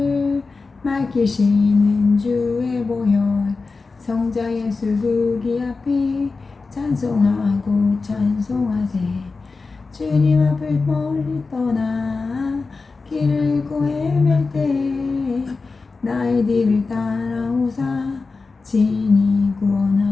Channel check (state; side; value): quieter; right; 4.1 dB